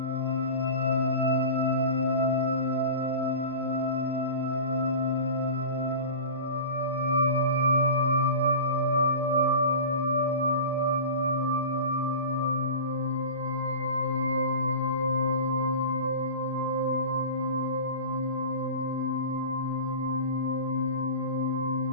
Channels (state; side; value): inverted; both; correlation -0.33